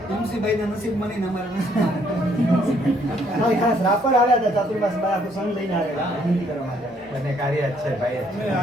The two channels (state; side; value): normal; both; correlation 0.67